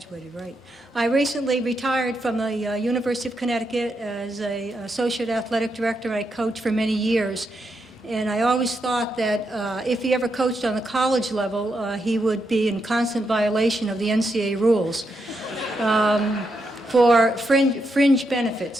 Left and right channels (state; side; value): normal; both; correlation 0.82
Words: right? I recently retired from the University of Connecticut as an associate athletic director. I coached for many years. And I always thought that if he ever coached on the college level, he would be in constant violation of the NCAA rules for fringe